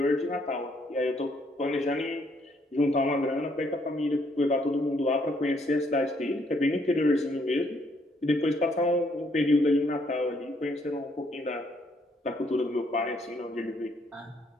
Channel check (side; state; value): both; normal; correlation 0.70